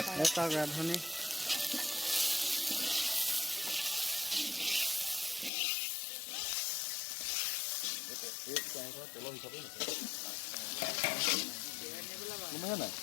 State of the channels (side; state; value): right; drops out; at 5.5 s